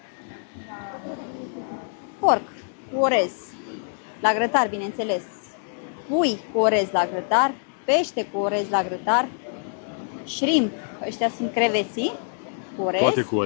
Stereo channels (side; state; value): right; silent; digital silence